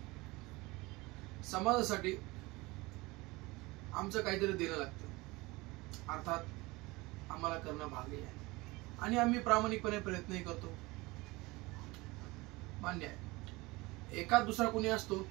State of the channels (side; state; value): left; quieter; 22.5 dB